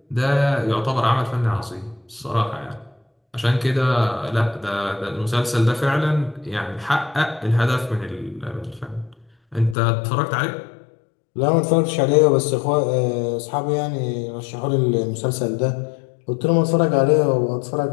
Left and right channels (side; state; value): right; drops out; at 9.8 s